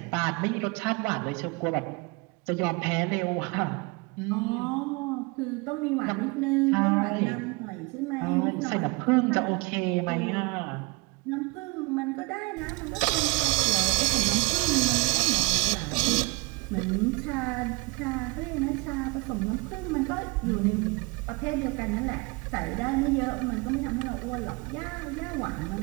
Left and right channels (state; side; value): quieter; left; 24.3 dB